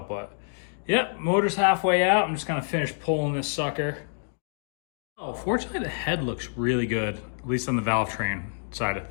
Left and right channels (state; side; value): silent; right; digital silence